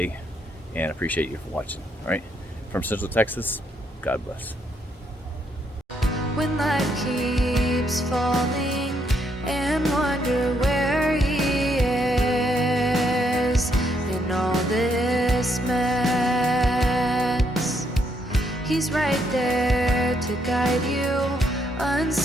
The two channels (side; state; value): both; normal; correlation 0.74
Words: and appreciate you for watching. All right, from Central Texas, God bless. When life keeps falling and wonder where he is in all this mess, he's right there to guide you,